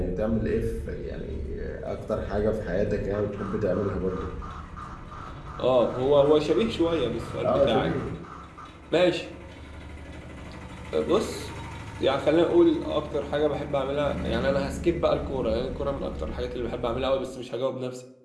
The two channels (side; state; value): both; identical; correlation 1.00